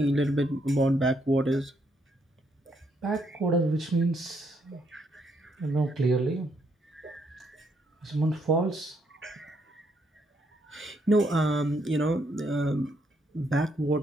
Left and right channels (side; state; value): both; normal; correlation 0.74